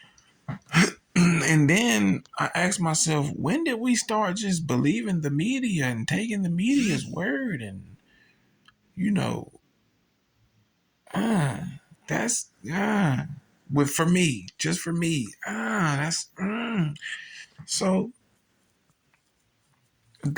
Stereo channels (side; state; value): both; identical; correlation 1.00